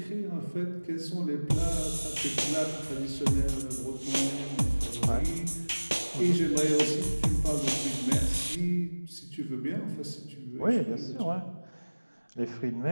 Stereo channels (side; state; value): both; inverted; correlation -1.00